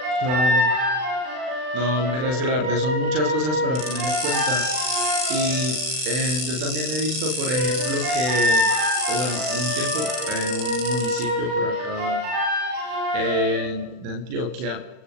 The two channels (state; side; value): late; left; 39 ms